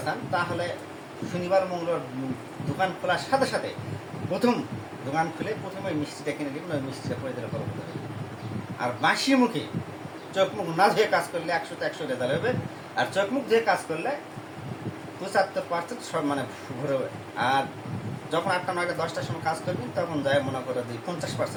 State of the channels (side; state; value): both; identical; correlation 1.00